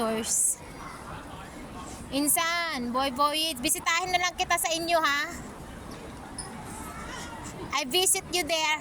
Insan, boy, bisitahin na lang kita sa inyo ha. I visit you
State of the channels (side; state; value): both; identical; correlation 1.00